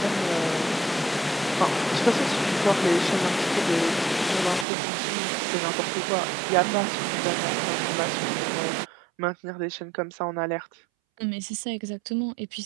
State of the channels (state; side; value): drops out; left; at 4.7 s